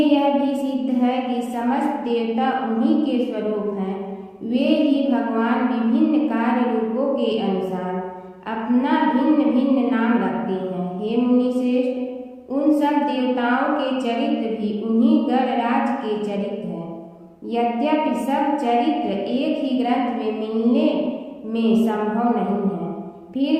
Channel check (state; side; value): identical; both; correlation 1.00